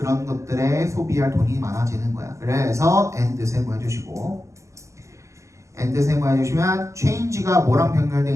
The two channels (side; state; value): left; late; 0.15 ms